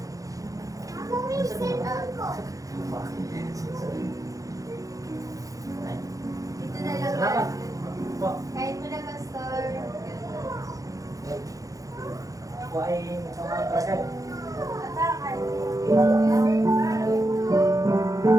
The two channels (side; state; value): left; late; 0.17 ms